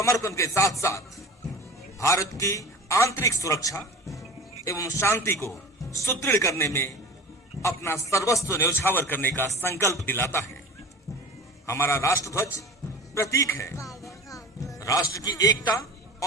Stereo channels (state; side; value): normal; both; correlation 0.36